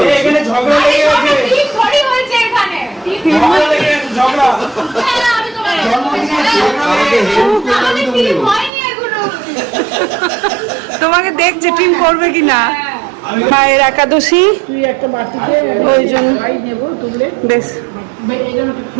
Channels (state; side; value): drops out; left; at 8.7 s